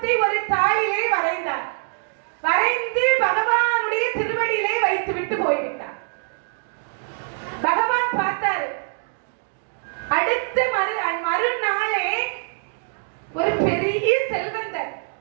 ஒரு தாளிலே வரைந்தார். வரைந்து பகவானுடைய திருவடியிலே வைத்து விட்டு போய்விட்டார். பகவான் பார்த்தாரு. அடுத்த மறுநாளே ஒரு பெரிய செல்வந்தர்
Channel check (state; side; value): silent; left; 63 dB below the other